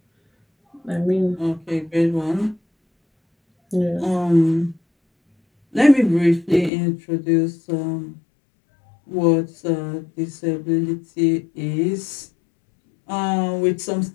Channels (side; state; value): right; drops out; at 6.7 s